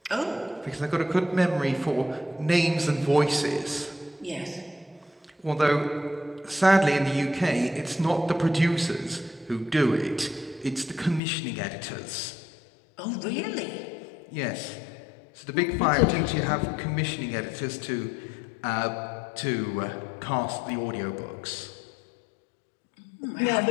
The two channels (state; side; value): drops out; right; at 11.2 s